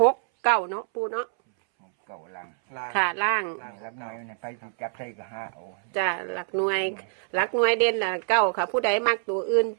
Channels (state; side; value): silent; left; 61 dB below the other